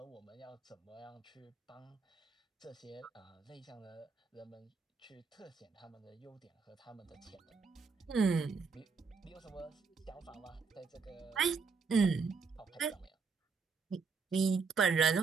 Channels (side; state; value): left; quieter; 5.0 dB